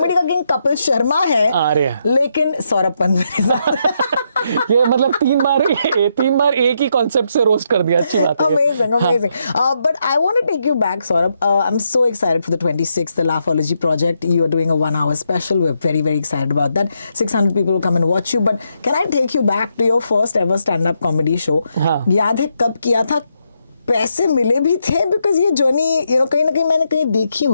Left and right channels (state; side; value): inverted; both; correlation -0.80